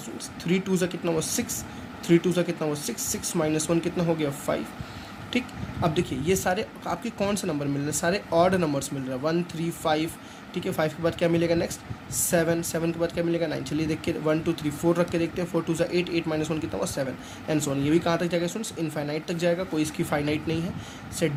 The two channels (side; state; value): both; identical; correlation 1.00